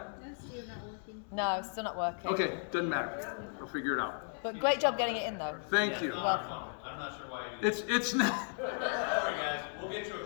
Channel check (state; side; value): silent; right; 54 dB below the other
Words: No, it's still not working. Okay, doesn't matter. We'll figure it out. But great job getting it in, though. Thank you. Welcome. I'm not sure why you. It's not. Sorry, guys. We'll get you a